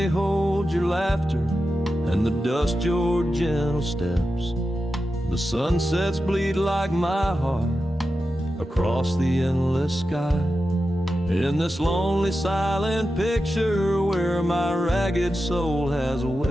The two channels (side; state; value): both; normal; correlation 0.91